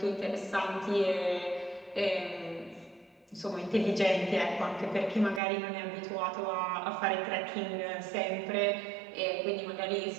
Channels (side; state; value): left; drops out; at 5.4 s